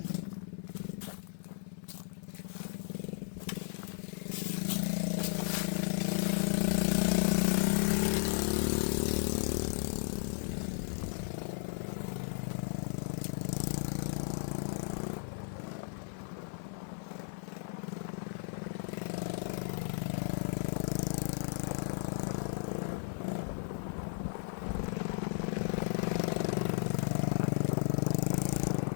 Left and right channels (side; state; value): right; silent; digital silence